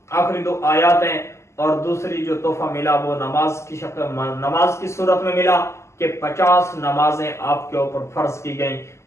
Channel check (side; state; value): right; late; 0.13 ms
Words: آخری 2 آیات ہیں، اور دوسری جو تحفہ ملا وہ نماز کی صورت میں ملا کہ 50 نمازیں آپ کے اوپر فرض کی گئیں،